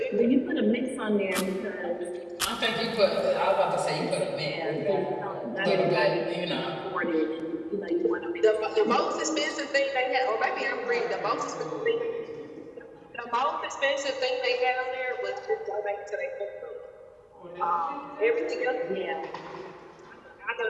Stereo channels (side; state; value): both; identical; correlation 1.00